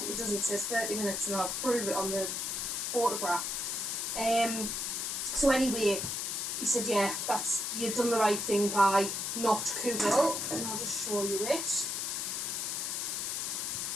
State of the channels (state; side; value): noise; left; hiss, 2 dB below the sound